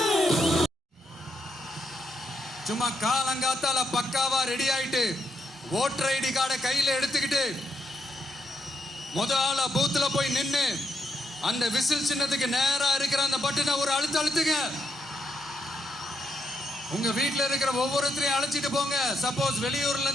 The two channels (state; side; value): normal; both; correlation 0.80